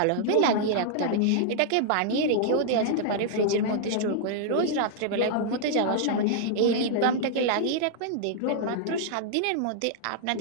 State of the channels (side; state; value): both; different; correlation -0.01